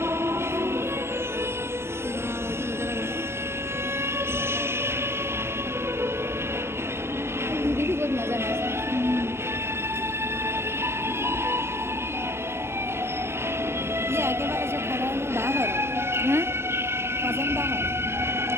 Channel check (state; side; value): late; left; 0.12 ms